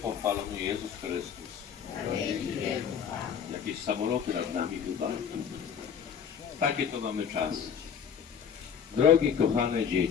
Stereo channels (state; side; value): quieter; right; 7.6 dB